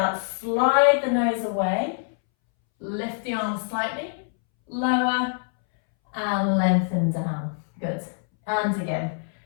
slide the nose away, lift the arms slightly, lower and lengthen down. Good. And again,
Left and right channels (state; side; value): silent; right; 62 dB below the other